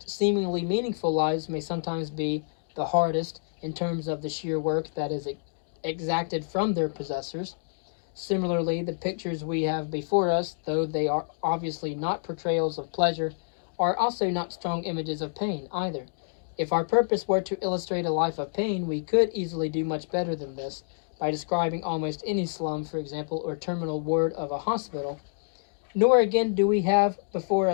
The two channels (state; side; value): silent; right; digital silence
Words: seemingly meaningful lives may sometimes be the hardest in terms of the sheer work that is exacted from their possessors. Similarly, the pictures we have before us, though they are obviously not portrayals of pleasure, are also not strong images of pain either. If our purpose were to illustrate a life of pain, we could easily do much better than this, by describing almost any slum, for example, or terminal ward of a hospital. Nor again do we have before